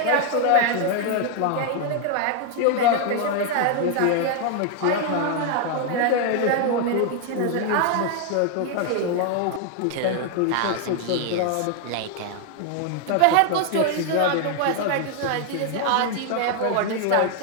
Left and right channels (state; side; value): different; both; correlation 0.00